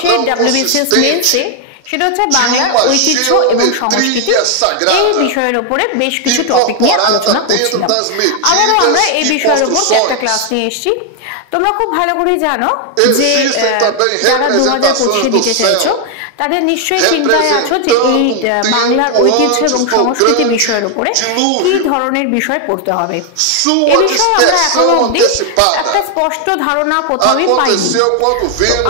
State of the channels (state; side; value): different; both; correlation 0.00